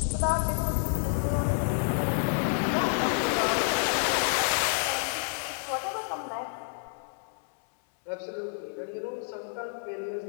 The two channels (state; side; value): silent; right; digital silence